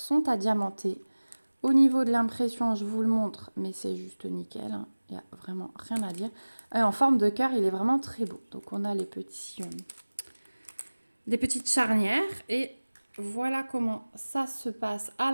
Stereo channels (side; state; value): both; inverted; correlation -1.00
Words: à diamanter. Au niveau de l'impression, je vous le montre, mais c'est juste nickel. Hein. Il n'y a vraiment rien à dire. Et en forme de cœur, il est vraiment très beau. Donc, on a les des petites charnières et voilà comment ça se passe à